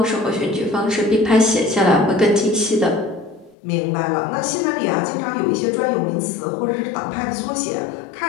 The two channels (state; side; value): drops out; right; at 3.6 s